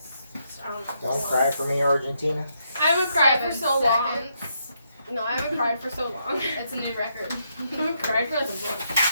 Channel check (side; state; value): both; inverted; correlation -0.78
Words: I don't know. Don't cry for me, Argentina. I haven't cried for 7 so long. seconds. No, I haven't cried for so long. It's a new record. I haven't cried for like a